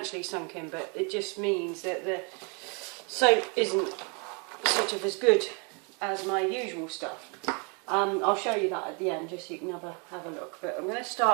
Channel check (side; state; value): left; quieter; 34.7 dB